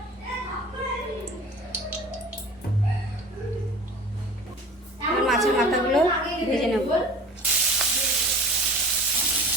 মাছের মাথাগুলো ভেজে নেব।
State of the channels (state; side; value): normal; both; correlation 0.41